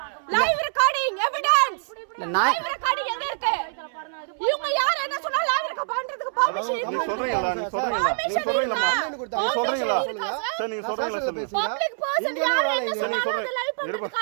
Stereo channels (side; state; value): left; silent; 62 dB below the other